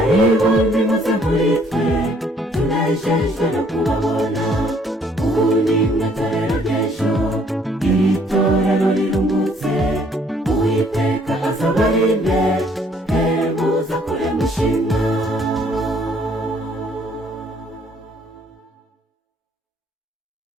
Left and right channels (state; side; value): normal; both; correlation 0.63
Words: nimuze muri twe tunejejwe no kubabona ubu ni mwe torero ry'ejo iri torero riruhutse uwiteka azabarinde muza kure mushima